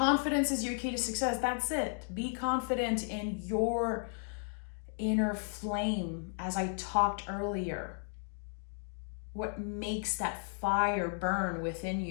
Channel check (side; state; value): right; silent; 55 dB below the other